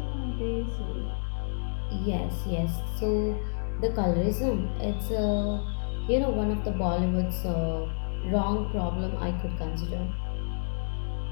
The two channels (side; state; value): right; silent; digital silence